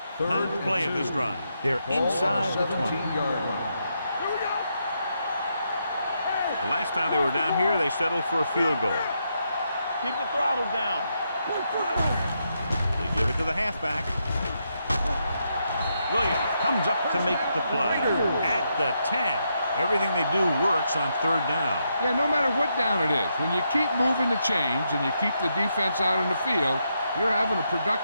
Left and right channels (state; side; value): inverted; both; correlation -0.81